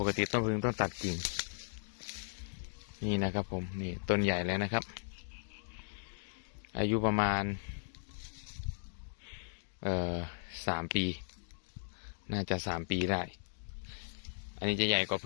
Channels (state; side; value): silent; right; digital silence